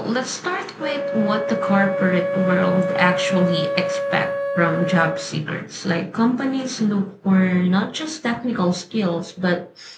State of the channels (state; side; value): identical; both; correlation 1.00